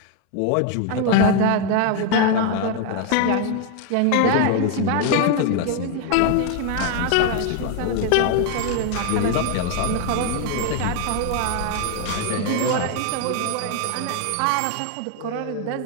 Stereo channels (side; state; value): both; different; correlation 0.01